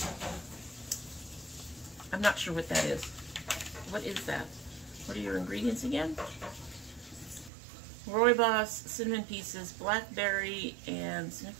I'm not sure what that is. What is that? What are your ingredients again? Rooibos, cinnamon pieces, blackberry, and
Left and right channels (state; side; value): drops out; left; at 7.5 s